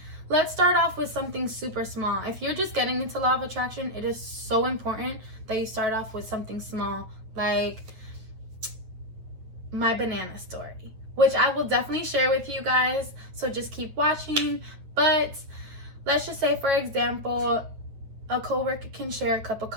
let's start off with something super small. If you're just getting into law of attraction, it is so important that you start off with something small, like my banana story, which I will definitely share with you guys. So just keep watching. But let's just say, for example, a coworker can share a cup of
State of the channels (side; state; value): left; late; 9.1 ms